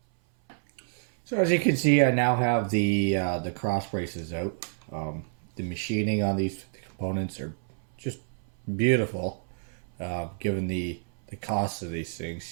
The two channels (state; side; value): silent; left; 58 dB below the other